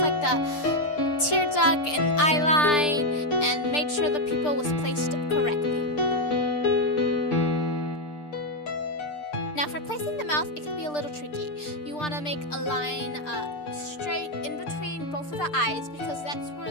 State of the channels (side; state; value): right; late; 6.7 ms